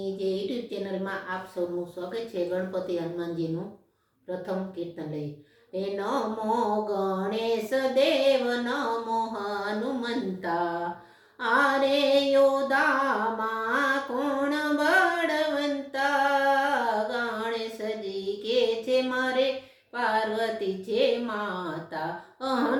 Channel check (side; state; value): both; identical; correlation 1.00